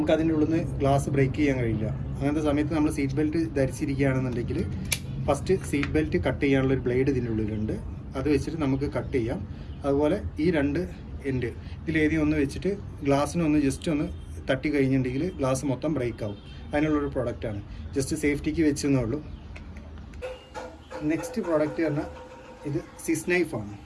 അതിൻ്റെ ഉള്ളിൽ നിന്ന് ഗ്ലാസ് ബ്രേക്ക് ചെയ്യാൻ കഴിയില്ല. അങ്ങനത്തെ സമയത്ത് നമ്മൾ സീറ്റ് ബെൽറ്റ് ധരിച്ചിരിക്കുകയാണെന്നുണ്ടെങ്കിൽ ഫസ്റ്റ് സീറ്റ് ബെൽറ്റ് കട്ട് ചെയ്യാനുള്ളൊരു ബ്ലേഡ് ഇതിൻ്റെ ഉള്ളിലുണ്ട്. അത് വെച്ചിട്ട് നമുക്ക് കട്ട് ചെയ്യാം. അതുപോലെ ഈ 2 എൻഡ് ഇതിലേതെങ്കിലും ഒന്ന് വെച്ചിട്ട് ഗ്ലാസ്സിനൊന്ന് ജസ്റ്റ് ഒന്ന് തട്ടി കഴിഞ്ഞിട്ടുണ്ടെങ്കിൽ ഗ്ലാസ് മൊത്തം ബ്രേക്ക് ആവും. അതിനുള്ളൊരു പ്രൊഡക്റ്റാണ്. ജസ്റ്റ് സേഫ്റ്റിക്ക് വെച്ചെന്നേ ഉള്ളൂ. നെക്സ്റ്റ് പ്രോഡക്റ്റ് പറഞ്ഞാൽ ഇത് സിസ് നൈഫാണ്.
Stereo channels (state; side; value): identical; both; correlation 1.00